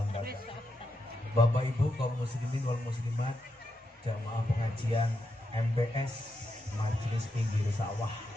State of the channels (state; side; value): normal; both; correlation 0.84